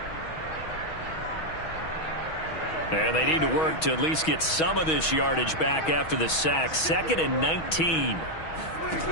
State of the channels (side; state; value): right; late; 6.3 ms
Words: And they need to work to at least get some of this yardage back after the sack. 2nd and 19.